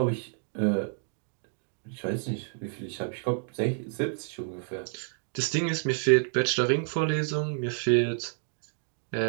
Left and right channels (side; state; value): left; silent; 58 dB below the other